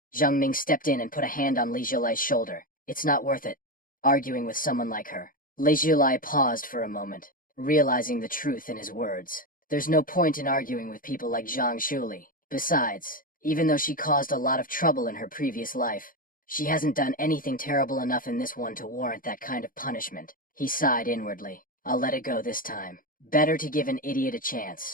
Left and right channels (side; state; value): right; late; 0.40 ms